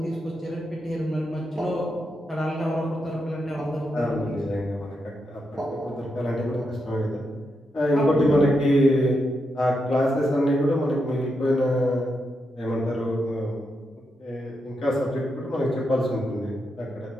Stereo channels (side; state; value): both; normal; correlation 0.84